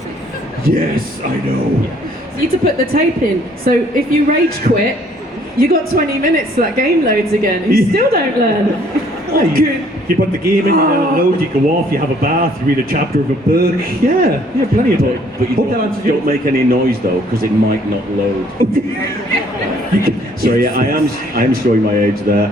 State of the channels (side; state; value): both; normal; correlation 0.61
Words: Yes, I know. You need to put the tape in. So if you rage quit, you got 20 minutes so that game loads again. You still don't learn. You put the game in, you let it load, you go off, you have a bath, you read a chapter of a book. Yeah, plenty of time. But you don't make any noise though, because it might not load. So yeah, I am showing my age